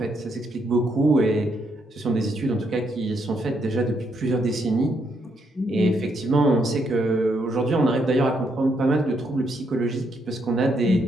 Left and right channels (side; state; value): both; normal; correlation 0.76